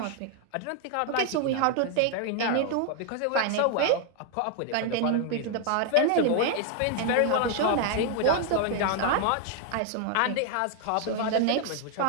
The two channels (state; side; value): different; both; correlation 0.00